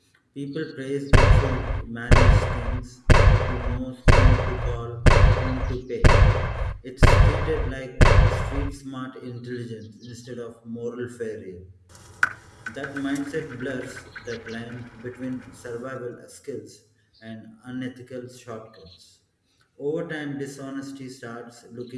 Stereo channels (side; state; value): both; identical; correlation 1.00